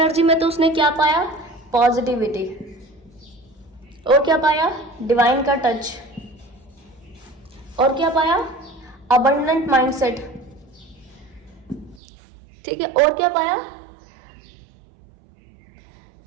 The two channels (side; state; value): left; drops out; at 12.0 s